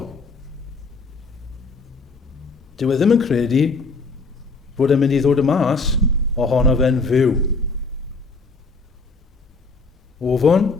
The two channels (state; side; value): quieter; right; 3.9 dB